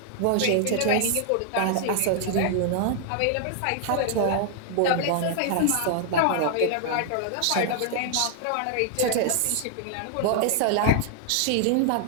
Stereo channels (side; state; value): both; different; correlation 0.00